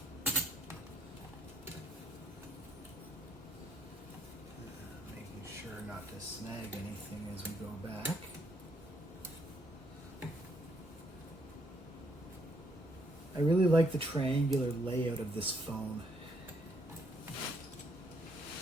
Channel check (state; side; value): normal; both; correlation 0.70